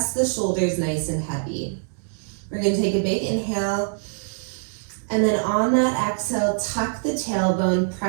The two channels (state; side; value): silent; left; digital silence